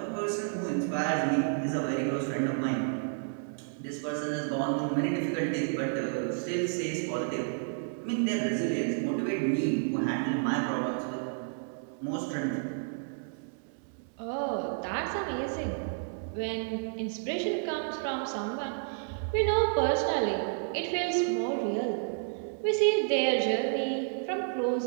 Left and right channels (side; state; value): left; silent; digital silence